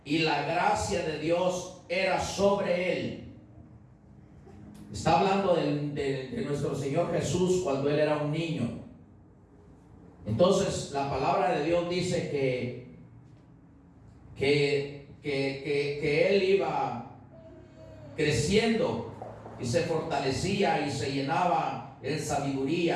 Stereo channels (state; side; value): identical; both; correlation 1.00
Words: y la gracia de Dios era sobre él. Está hablando de nuestro Señor Jesús cuando Él era un niño. Entonces la palabra de Dios dice que Él iba creciendo y se fortalecía y se llenaba en